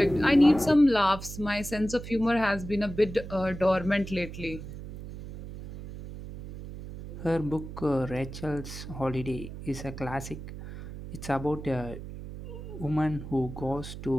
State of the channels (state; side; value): noise; right; hum, 11 dB below the sound